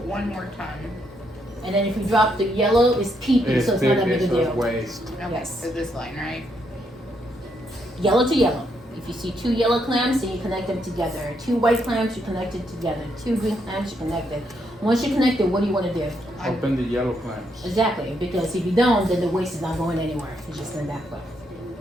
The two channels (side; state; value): both; normal; correlation 0.76